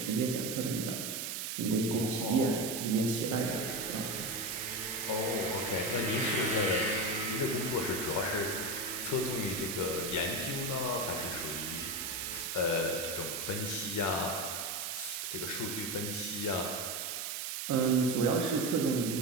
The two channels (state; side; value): noise; right; hiss, 3 dB below the sound